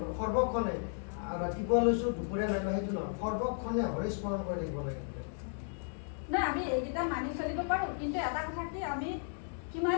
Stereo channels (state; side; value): silent; right; 55 dB below the other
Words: সৰ্বক্ষণে ৰাতিপুৱা লৈছো দুপৰীয়া নাই সেইটো নহয় সৰ্বক্ষণে হৰি স্মৰণ কৰি থাকিব লাগিব না আমি এইকেইটা মানি চলিব পাৰো কিন্তু এটা কথা কি আমি